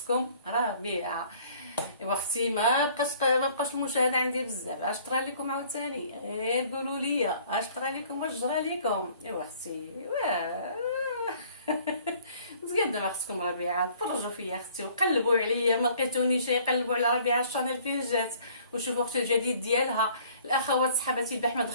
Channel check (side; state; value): both; inverted; correlation -0.56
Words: ربيعه. ايوا اختي ما بقاش المشاهده عندي بزاف، اش طرا لكم عاوتاني؟ غير قولوا لي اش طرا لكم واش جرى لكم. ايوا اختي مزيان دابا خصكم ربيعه تفرجوا فيا اختي وقلبوا عليا، ما لقيتونيش يقلبوا على ربيعه الشانيل فين جات وشوفوا اختي الجديد ديالها. الاخوات صحباتي البارح ما